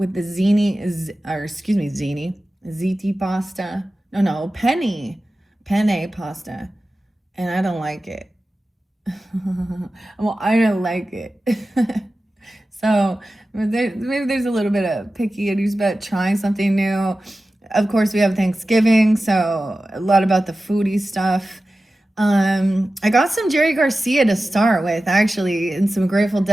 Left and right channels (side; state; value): both; normal; correlation 0.95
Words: the ziti pasta. No, penne pasta. And I don't like it. Well, I don't like it. So maybe there's a little bit of picky about trying something new. Of course, we have Thanksgiving, so a lot about the foodie stuff. I got some Jerry Garcia to start with, actually, and some Grateful